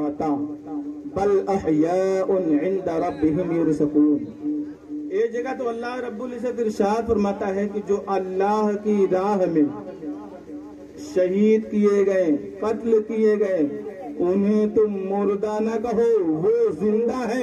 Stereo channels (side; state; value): both; identical; correlation 1.00